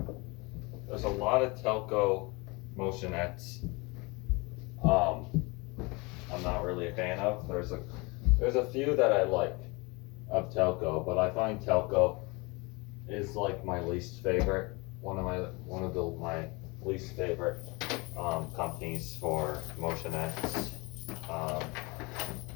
There's a lot of Telco motionettes I'm not really a fan of. There's a few that I like of Telco, but I find Telco is like my least favorite. One of my least favorite companies for motionettes.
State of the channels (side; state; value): right; quieter; 26.8 dB